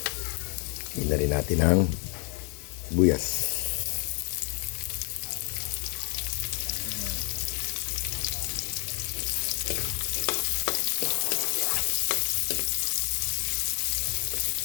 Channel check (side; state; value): right; quieter; 36.8 dB